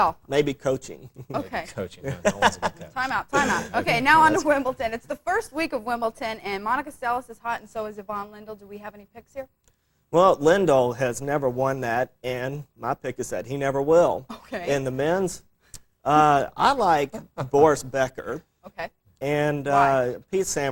Maybe coaching. okay. Coaching. No one's a good coach. Time out. Okay, now on to Wimbledon. It's the first week of Wimbledon, and Monica Seles is hot, and so is Yvonne Lindell. Do we have any picks here? Well, Lindell has never won that, and my pick is that he never will. Okay. In the men's, I like Boris Becker, Okay. and Why? Pete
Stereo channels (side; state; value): both; identical; correlation 1.00